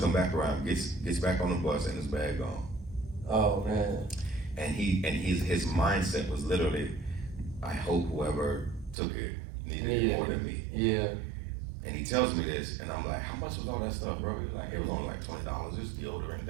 come back around, gets back on the bus, and his bag gone. Oh, man. and his mindset was literally, I hope whoever took it needed it more than me. Yeah. And he tells me this, and I'm like, how much was all that stuff, bro? He's like, it was only like $20, it's deodorant,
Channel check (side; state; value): left; drops out; at 9.0 s